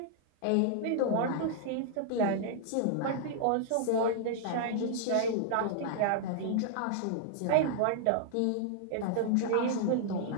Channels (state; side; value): different; both; correlation -0.01